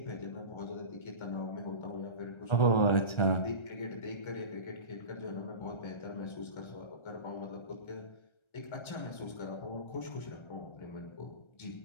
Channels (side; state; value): right; late; 1.3 ms